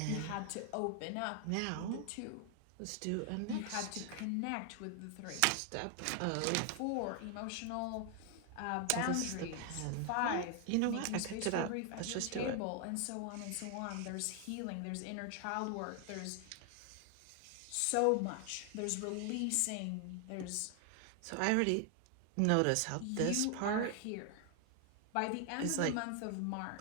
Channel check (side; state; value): both; different; correlation 0.00